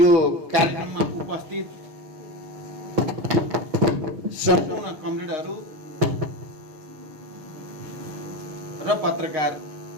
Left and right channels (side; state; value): left; late; 6.0 ms